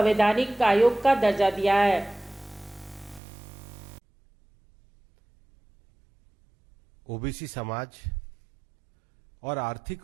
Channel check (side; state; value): left; drops out; at 3.2 s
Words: आयोग का दर्जा दिया है। ओबीसी समाज और